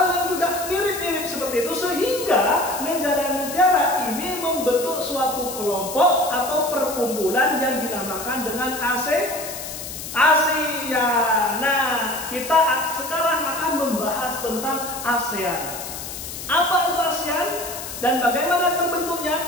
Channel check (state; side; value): noise; left; hiss, 9 dB below the sound